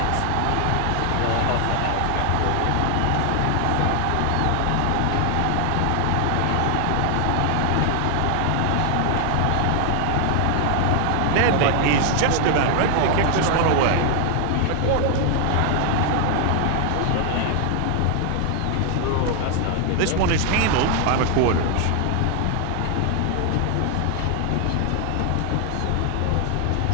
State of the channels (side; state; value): both; different; correlation 0.00